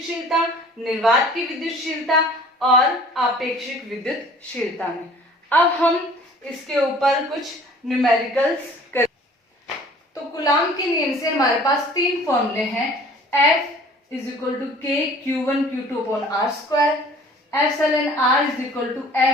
निर्वात की विद्युतशीलता और आपेक्षिक विद्युतशीलता में। अब हम इसके ऊपर कुछ न्यूमेरिकल्स करें। तो कूलाम के नियम से हमारे पास 3 फॉर्मूले हैं, F is equal to K Q1 Q2 upon R², epsilon R is equal to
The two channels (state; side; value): normal; both; correlation 0.50